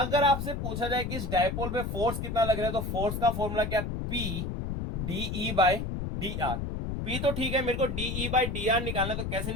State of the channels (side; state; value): left; noise; rumble, 3 dB below the sound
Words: आपसे पूछा जाए कि इस डायपोल पे फोर्स कितना लग रहा है, तो फोर्स का फॉर्मूला क्या, P de by D are. P तो ठीक है, मेरे को de बाई डी आर निकालना, तो कैसे